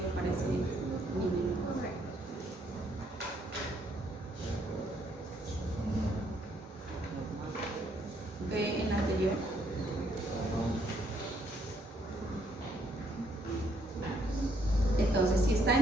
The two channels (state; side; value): normal; both; correlation 0.70